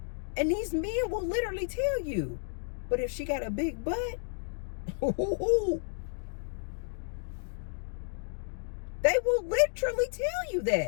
And these men will literally tell you, but if she got a big butt, they will literally tell you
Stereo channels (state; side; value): silent; right; digital silence